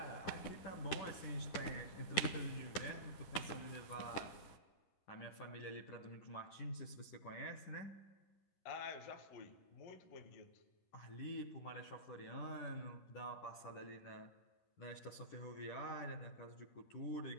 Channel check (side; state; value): right; late; 10 ms